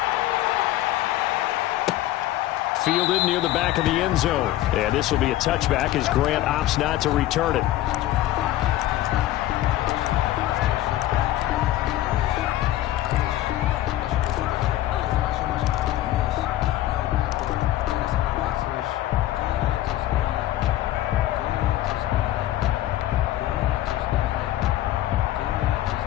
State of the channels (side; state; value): right; quieter; 14.4 dB